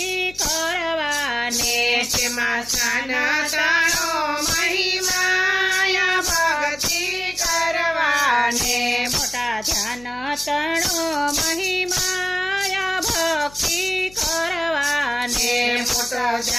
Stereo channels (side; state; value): left; noise; hum, 22 dB below the sound